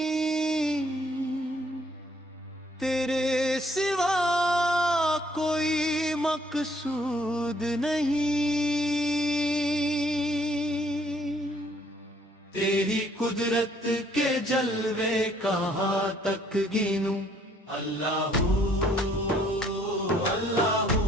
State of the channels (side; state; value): both; normal; correlation 0.64